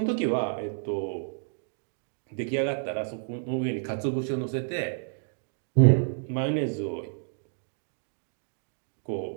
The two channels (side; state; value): left; silent; digital silence